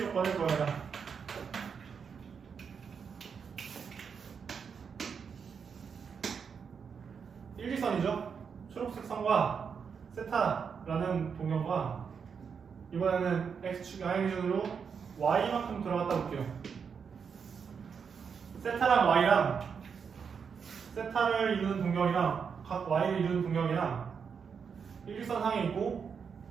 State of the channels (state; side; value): quieter; left; 6.4 dB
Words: 구해라. 일직선이죠. 초록색 선과 세타라는 동경과 이번에는 x축 양의 기준으로 y만큼 들어갔다 볼게요. 세타랑 y랑 세타를 이루는 동경이랑 각 y를 이루는 동경이랑 일직선 상에 있고